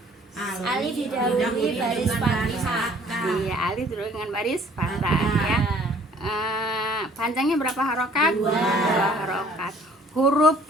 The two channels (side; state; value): both; normal; correlation 0.56